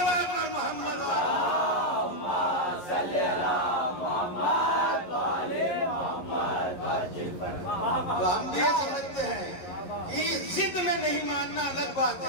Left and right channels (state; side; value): late; right; 11 ms